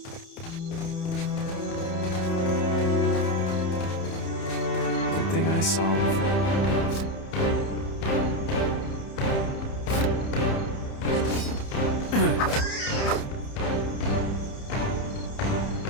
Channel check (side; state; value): right; late; 30 ms